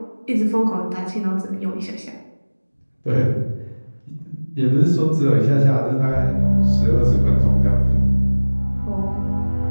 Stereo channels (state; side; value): inverted; both; correlation -1.00